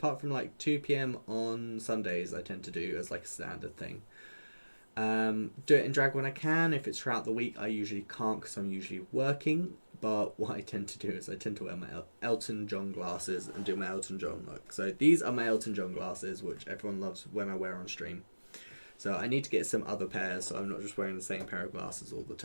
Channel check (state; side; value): inverted; both; correlation -1.00